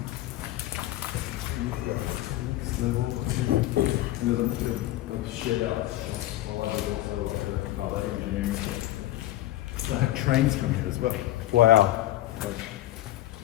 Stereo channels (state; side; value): quieter; right; 15.1 dB